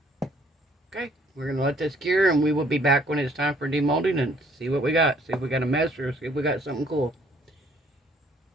Okay, we're going to let this cure, and we will be back when it's time for demolding and see what we got. See if we got a mess or see if we got something cool.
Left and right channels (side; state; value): both; normal; correlation 0.62